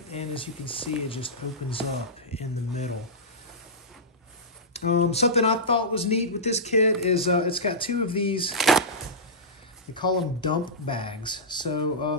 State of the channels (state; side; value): normal; both; correlation -0.13